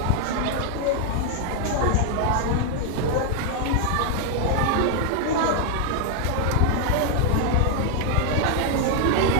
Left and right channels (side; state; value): both; different; correlation 0.00